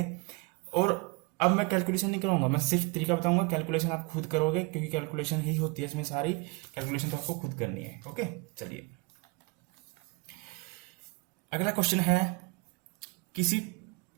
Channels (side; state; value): left; quieter; 27.9 dB